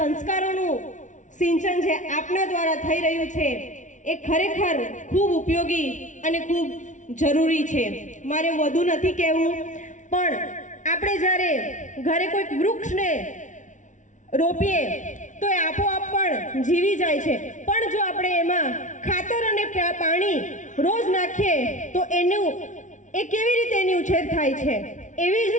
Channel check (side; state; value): right; late; 0.36 ms